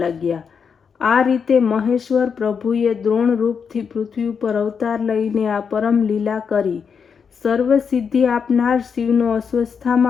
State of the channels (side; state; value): right; quieter; 6.4 dB